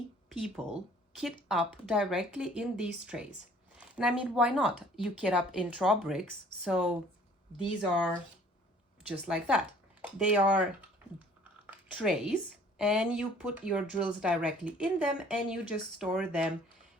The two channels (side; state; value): both; normal; correlation 0.54